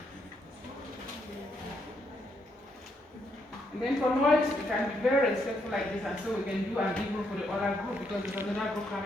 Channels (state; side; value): normal; both; correlation 0.76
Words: And then for noise, we can be very respectful like this, and so we can do an evening for the other group because there's another group